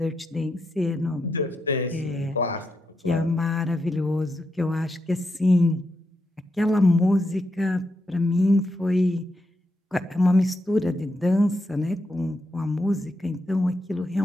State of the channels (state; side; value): normal; both; correlation 0.83